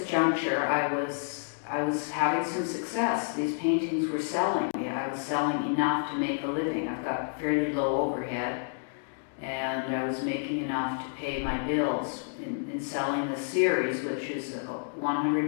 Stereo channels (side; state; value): right; silent; digital silence